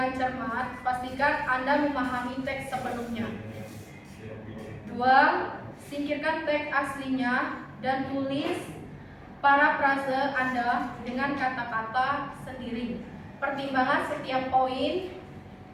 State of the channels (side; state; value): both; identical; correlation 1.00